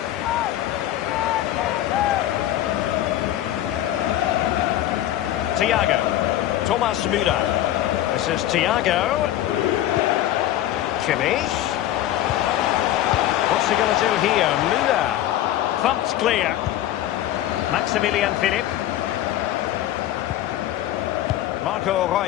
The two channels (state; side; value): quieter; right; 13.2 dB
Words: Thiago. Thomas Müller. This is Thiago. Kimmich. What's he going to do here? Müller. Thumped clear. Maximilian Philipp. Marco